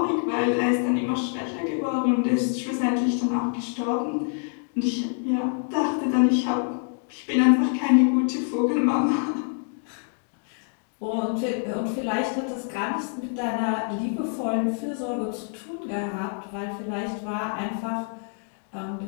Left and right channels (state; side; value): silent; right; 55 dB below the other